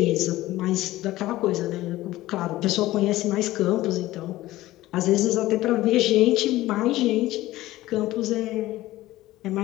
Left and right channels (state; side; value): quieter; right; 16.6 dB